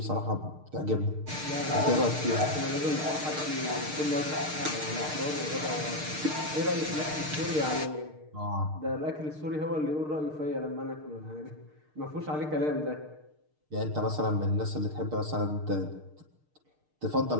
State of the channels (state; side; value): late; left; 6.6 ms